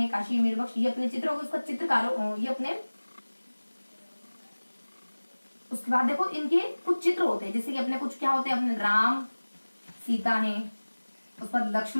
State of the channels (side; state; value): both; inverted; correlation -1.00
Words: काशी, मीर बख्श, ये अपने चित्र हो गए। उसका चित्रकारों ये अपने, उसके बाद देखो इनके कुछ चित्र होते हैं, जैसे कि अपने कुछ क्या होते हैं, अपने राम सीता है, उसके बाद